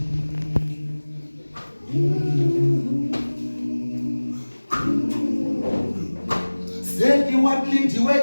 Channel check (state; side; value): inverted; both; correlation -1.00